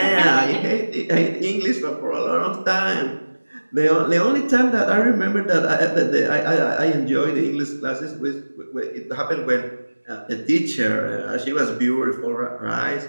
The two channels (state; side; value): inverted; both; correlation -1.00